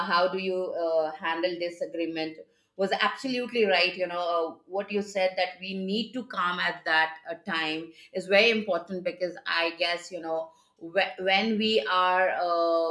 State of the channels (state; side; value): identical; both; correlation 1.00